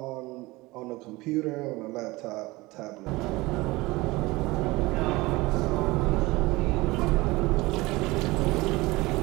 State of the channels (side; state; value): left; quieter; 21.4 dB